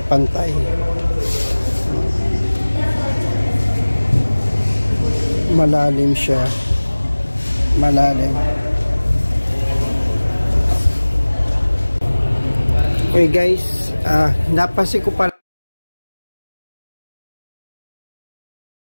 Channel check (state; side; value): inverted; both; correlation -1.00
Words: pantay. Malalim siya. Malalim. Okay guys, napansin ko pala